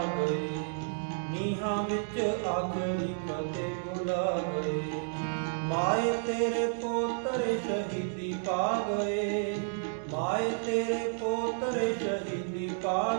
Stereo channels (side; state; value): left; silent; digital silence